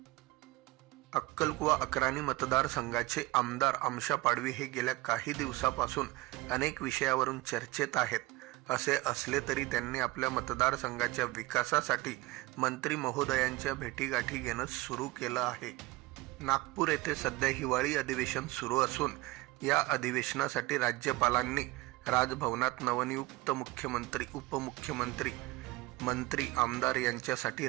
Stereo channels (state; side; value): quieter; left; 19.8 dB